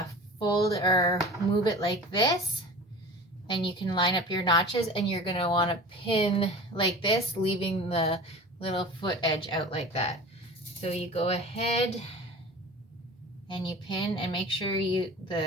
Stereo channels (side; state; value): both; normal; correlation 0.38